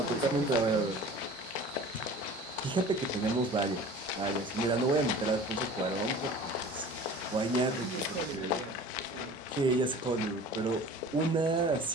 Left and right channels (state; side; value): normal; both; correlation 0.42